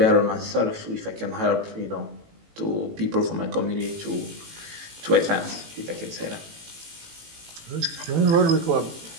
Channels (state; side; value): late; left; 18 ms